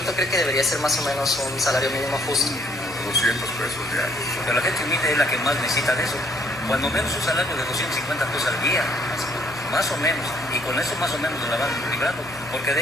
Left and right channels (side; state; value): both; normal; correlation 0.65